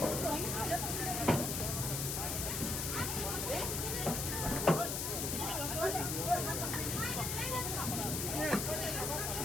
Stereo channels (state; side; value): noise; left; hiss, 1 dB below the sound